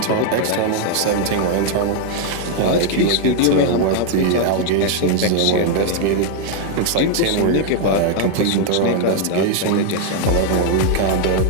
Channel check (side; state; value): both; different; correlation 0.00